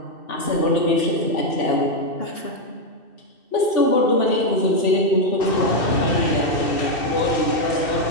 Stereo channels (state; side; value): late; right; 2.6 ms